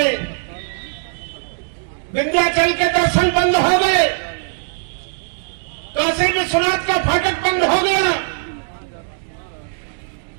विंध्याचल के दर्शन बंद हो गए, काशी विश्वनाथ का फाटक बंद हो गया,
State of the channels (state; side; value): silent; left; digital silence